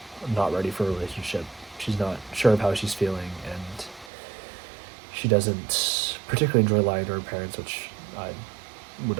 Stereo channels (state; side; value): drops out; left; at 4.1 s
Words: not ready for a relationship. She's not sure of how she's feeling, and she doesn't particularly enjoy lying to her parents, which I would